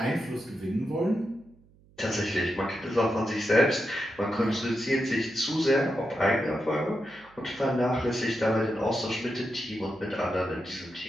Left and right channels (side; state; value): right; noise; hum, 28 dB below the sound